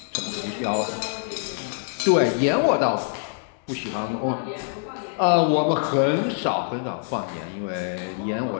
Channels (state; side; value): silent; right; digital silence